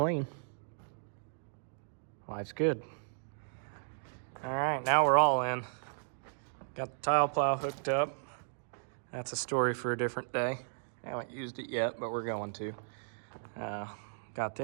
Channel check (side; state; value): left; silent; digital silence